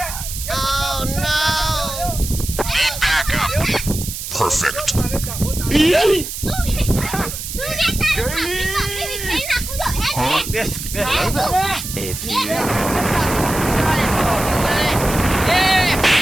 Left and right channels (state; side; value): noise; right; hiss, 7 dB below the sound